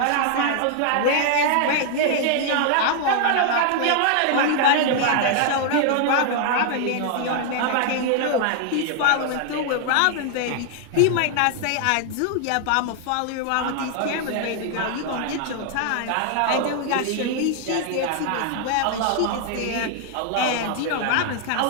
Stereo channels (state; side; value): different; both; correlation 0.00